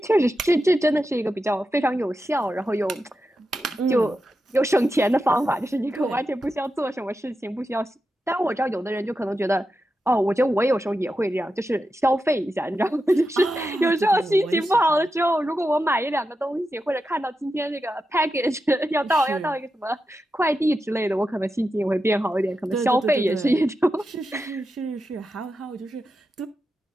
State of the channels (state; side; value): normal; both; correlation 0.89